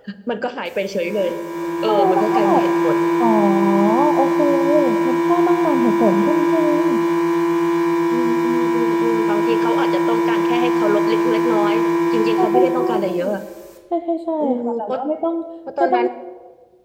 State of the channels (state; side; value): identical; both; correlation 1.00